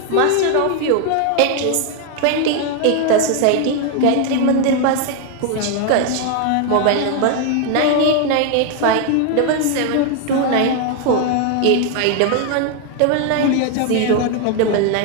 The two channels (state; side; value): different; both; correlation 0.01